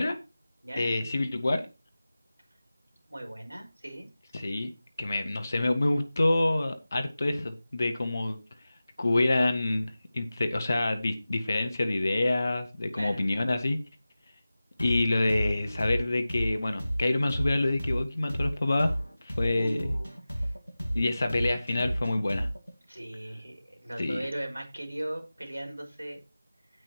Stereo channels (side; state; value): both; inverted; correlation -0.96